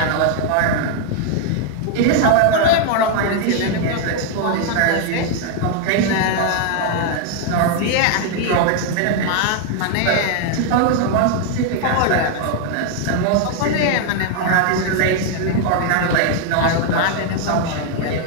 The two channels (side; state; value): both; different; correlation 0.00